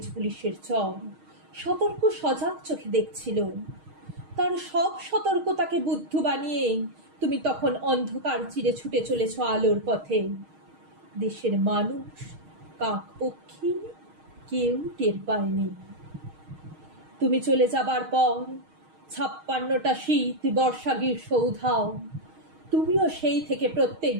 পুলিশের চর সতর্ক সজাগ চোখে দেখছিল। তার সব সতর্কতাকে বুদ্ধ বানিয়ে তুমি তখন অন্ধকার চিরে ছুটে চলেছ আলোর পথে। দেশের মানুষ, কাক পক্ষী কেউ টের পায়নি। তুমি চলে যাবার পর ৫৬টা শীত, বর্ষা, গ্রীষ্ম উধাও। তুমিও সেই থেকে প্রত্যেক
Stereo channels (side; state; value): left; late; 6.4 ms